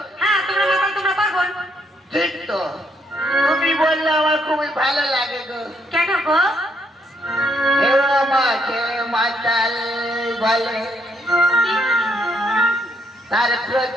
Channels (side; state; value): both; normal; correlation 0.73